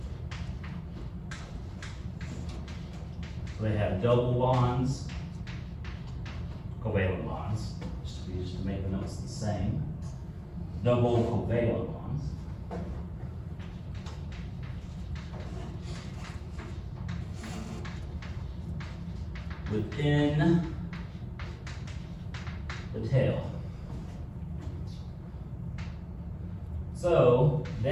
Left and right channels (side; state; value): both; identical; correlation 1.00